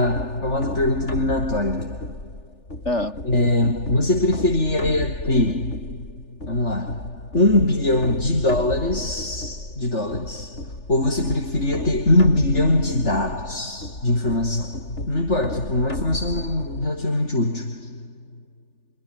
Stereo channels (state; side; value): late; right; 3.4 ms